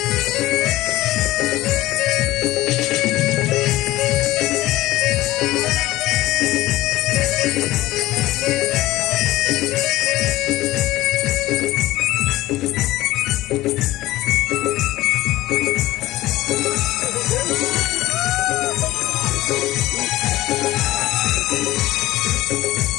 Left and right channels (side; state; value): right; quieter; 16.8 dB